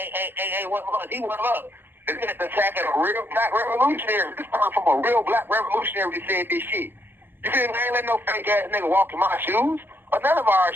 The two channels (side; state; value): left; late; 0.10 ms